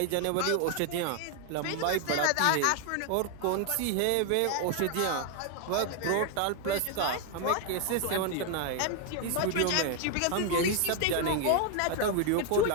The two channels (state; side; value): different; both; correlation 0.01